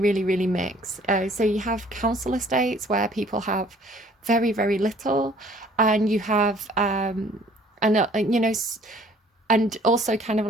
really mix. So you have council estates where people have very, very little, and you have and you know, and also kind of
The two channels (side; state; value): both; normal; correlation 0.57